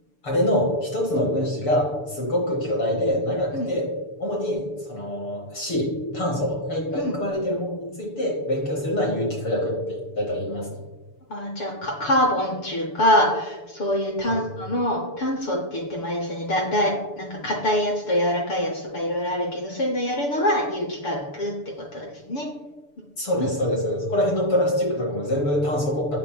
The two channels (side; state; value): right; late; 6.9 ms